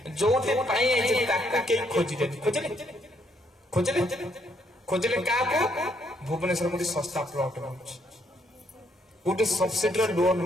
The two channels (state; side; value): normal; both; correlation 0.72